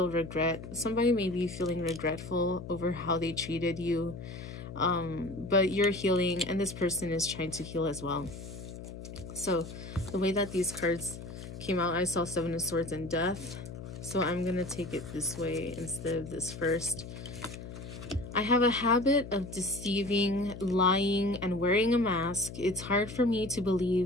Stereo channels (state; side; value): noise; left; hum, 11 dB below the sound